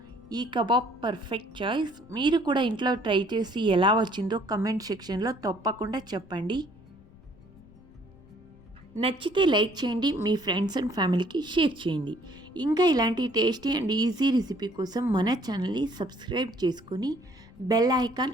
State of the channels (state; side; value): noise; left; rumble, 24 dB below the sound